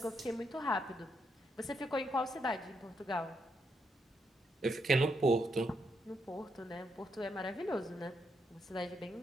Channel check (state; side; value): normal; both; correlation 0.79